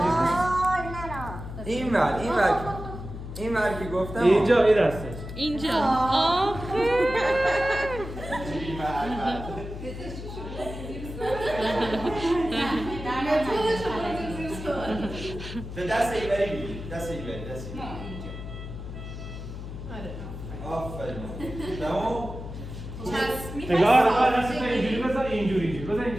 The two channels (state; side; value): noise; left; hum, 9 dB below the sound